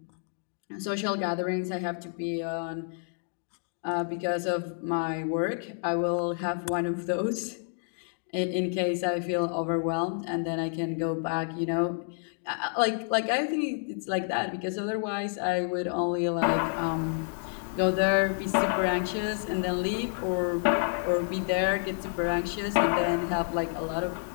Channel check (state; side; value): silent; right; 58 dB below the other